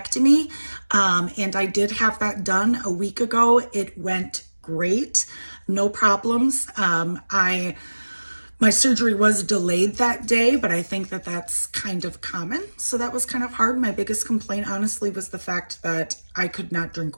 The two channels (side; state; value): both; inverted; correlation -1.00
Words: and I did have that done a week ago. It went great, no problems. My surgery was delayed that day, but I think that that's kind of common. So that was kind of hard. My biggest complaint, honestly, was the fact that I could not